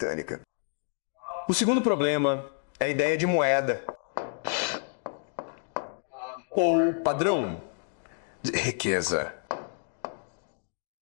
O segundo problema é a ideia de moeda, ou padrão de riqueza.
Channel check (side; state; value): right; silent; digital silence